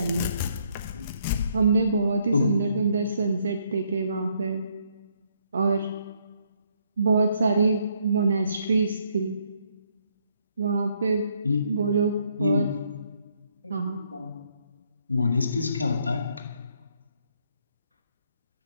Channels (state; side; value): inverted; both; correlation -0.71